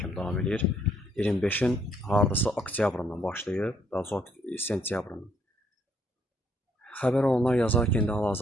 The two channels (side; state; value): both; normal; correlation 0.69